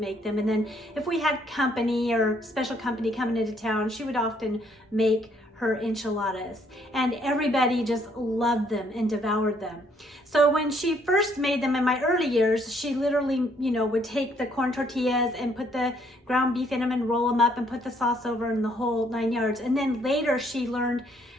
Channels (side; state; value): both; normal; correlation 0.67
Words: them, and then if we had company or special company coming into town, she would often make her enchiladas, and everybody just loved them and devoured them. So when she first made them in my early years, she literally, would take the corn tortillas and put the ground beef in them and roll them up and put the sauce over and the whole 9 yards. And then later she learned